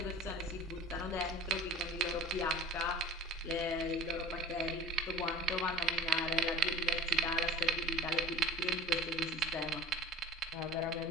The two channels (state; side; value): normal; both; correlation 0.39